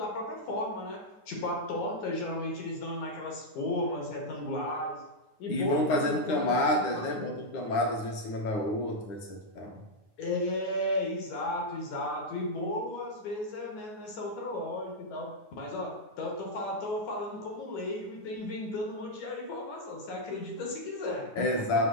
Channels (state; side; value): late; right; 9.5 ms